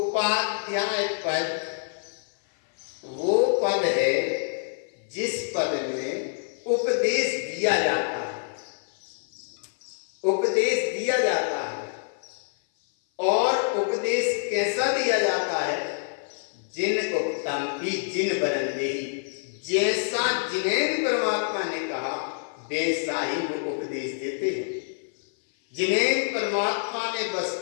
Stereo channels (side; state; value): right; silent; 56 dB below the other